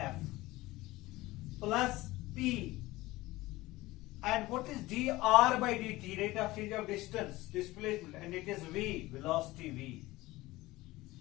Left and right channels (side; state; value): right; quieter; 19.1 dB